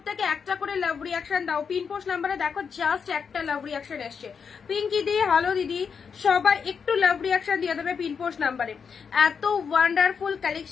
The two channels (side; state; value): right; quieter; 6.2 dB